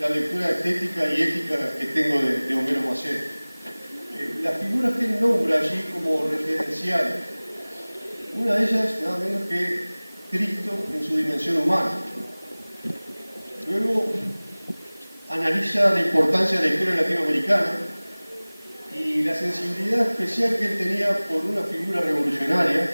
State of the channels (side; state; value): both; inverted; correlation -1.00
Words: lectura estética y ética que tengo de Homero Macedo. Las figuras que él nombra allí como referenciales, una de ellas nada menos que Cristo en su dimensión humana. Luego analiza la importancia de la historia latinoamericana y la sensibilidad especial que él tenía por una figura revolucionaria,